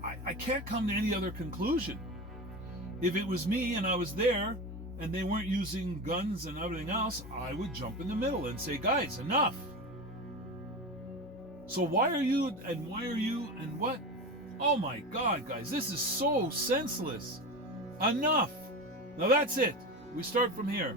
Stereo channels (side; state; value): both; normal; correlation 0.26